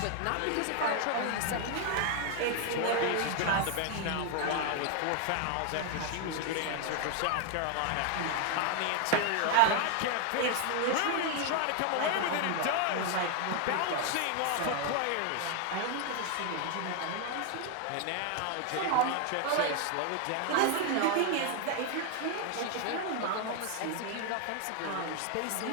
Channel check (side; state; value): both; different; correlation 0.00